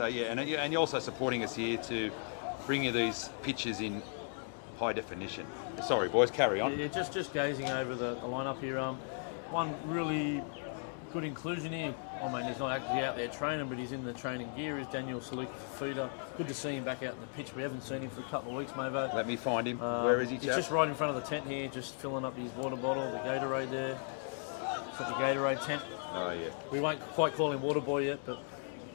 yeah, and you're also supporting us here to bring you these pictures in high definition. Sorry, boys, carry on. Yeah, just gazing over the lineup here. One really good inclusion here. I mean, he's not actually out there training, but he's in the training gear. Is Daniel Saluk-Fafita. Good to see him back out in the pitch. We haven't seen him for a couple of weeks, Mavo. Let me find him. Where is he, He's chap? just right in front of the tent here, just filling up his water bottle, the Gatorade there. It's at the Gatorade tent. Oh yeah, We won't quite call him Water Boy yet, but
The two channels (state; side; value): silent; right; 54 dB below the other